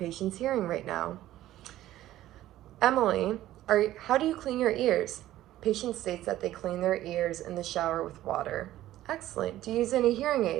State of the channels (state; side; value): quieter; left; 14.2 dB